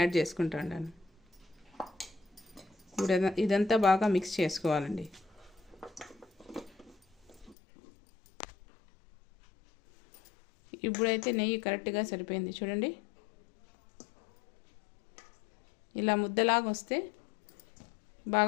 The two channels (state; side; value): drops out; right; at 7.6 s